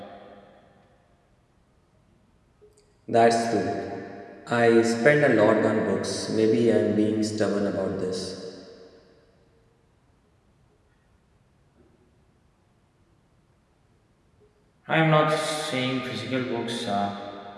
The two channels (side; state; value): both; identical; correlation 1.00